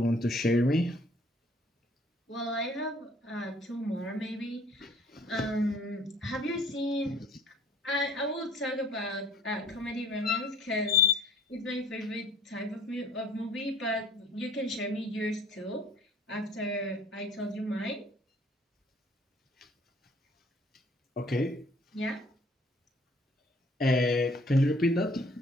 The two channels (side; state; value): both; normal; correlation 0.55